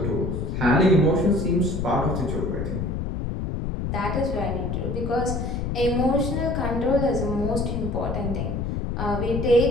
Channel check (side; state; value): left; noise; rumble, 2 dB below the sound